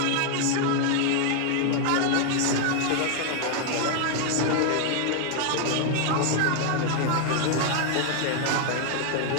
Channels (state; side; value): different; both; correlation 0.00